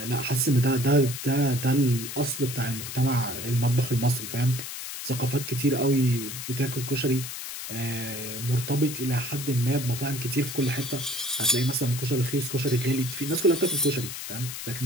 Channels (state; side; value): noise; left; hiss, 8 dB below the sound